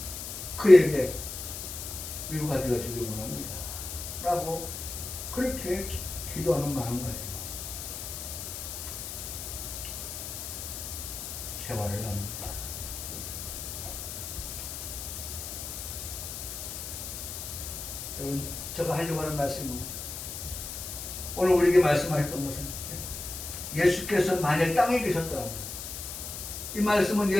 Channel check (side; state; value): left; noise; hiss, 7 dB below the sound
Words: 그에게 위로가 되어지길 원합니다. 라고 그렇게 기도하는 마음가짐 생활을 합니다. 여러분, 제가 하려고 하는 말씀은 오늘 우리에게 말씀하셨던 것은 예수께서 만약 땅에 계셨더라면 이 말씀은